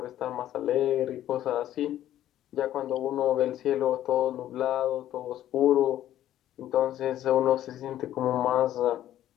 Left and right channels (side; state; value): right; quieter; 12.4 dB